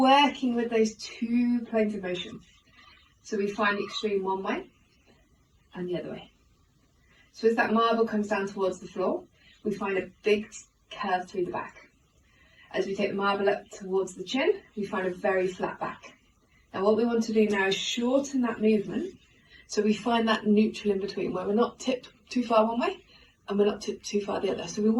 with those two planes of motion. So we find the extreme one way and the other way. So as that marble comes down towards the floor, we find a big curve through the back. As we take the marble up towards the chin, we find a very flat back. Now what we want to do now is shorten that movement so we find that neutral in between where we're not tipped too far one way and we're not tipped too far the other. So we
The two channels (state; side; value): identical; both; correlation 1.00